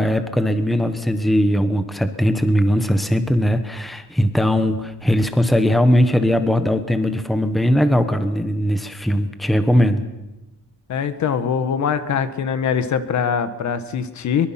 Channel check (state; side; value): normal; both; correlation 0.79